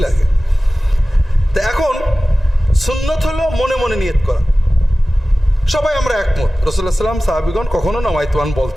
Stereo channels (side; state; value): both; normal; correlation 0.96